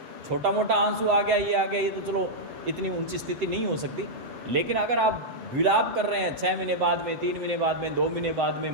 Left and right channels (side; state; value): left; late; 7.5 ms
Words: छोटा मोटा आंसू आ गया, ये आ गया, ये तो चलो इतनी ऊंची स्थिति नहीं हो सकती, लेकिन अगर आप विलाप कर रहे हैं 6 महीने बाद में, 3 महीने बाद में, 2 महीने बाद में,